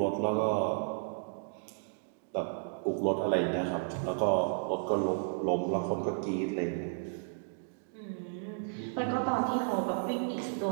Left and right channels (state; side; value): silent; left; digital silence